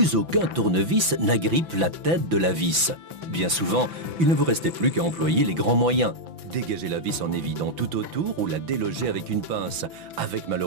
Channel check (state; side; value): late; left; 6.0 ms